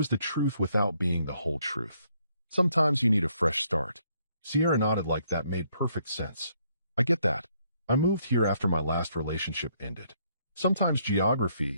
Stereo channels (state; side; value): inverted; both; correlation -0.70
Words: the truth without being the whole truth. Sometimes you need a fresh start. Sierra nodded like that made perfect sense. I get that. I moved here after my last relationship ended. Sometimes